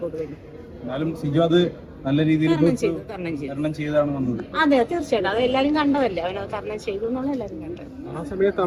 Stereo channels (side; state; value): both; identical; correlation 1.00